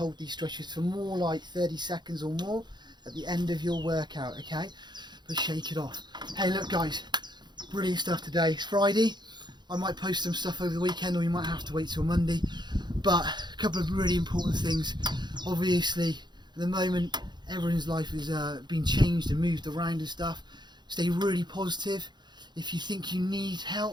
these stretches for more like 30 seconds or more at the end of your workout, okay? But shake it off. Hey, look guys, brilliant stuff today. It's Friday. I might post some stuff over the weekend, or you might have to wait till Monday. But a couple of really important things. Obviously, at the moment, everyone's life has been changed and moved around and stuff. Stay really positive. If you think you need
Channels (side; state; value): left; late; 0.21 ms